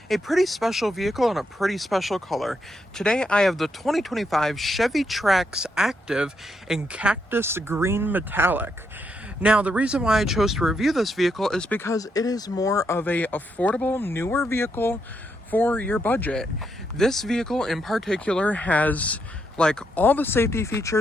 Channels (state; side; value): normal; both; correlation 0.79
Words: a pretty special vehicle in a pretty special color. Today I have the 2025 Chevy Trax Active in Cactus Green Metallic. Now the reason why I chose to review this vehicle is because it is more of a affordable, newer vehicle for your budget. This vehicle in particular has like all the safety